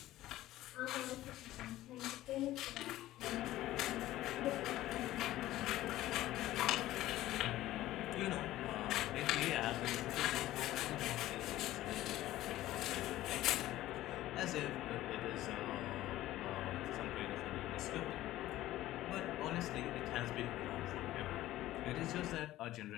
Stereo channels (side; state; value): right; quieter; 15.3 dB